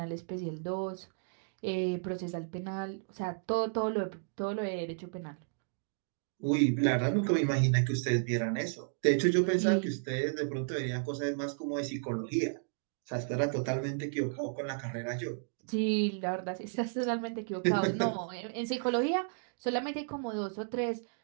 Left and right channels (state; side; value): silent; left; digital silence